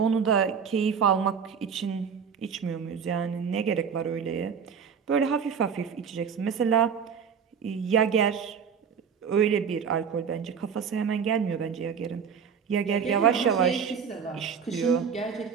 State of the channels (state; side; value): quieter; left; 6.8 dB